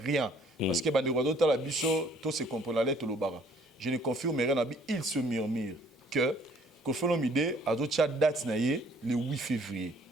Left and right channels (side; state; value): both; normal; correlation 0.59